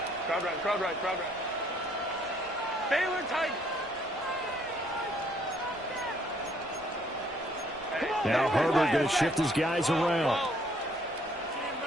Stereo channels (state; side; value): normal; both; correlation 0.65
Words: Crowd right. Baylor tight. Now Herbert going to shift his guys around.